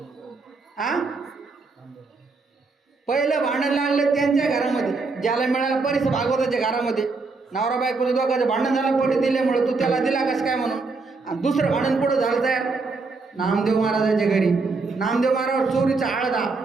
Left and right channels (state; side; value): quieter; left; 4.0 dB